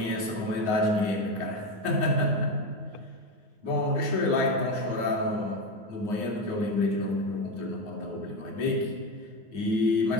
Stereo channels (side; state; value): left; late; 9.5 ms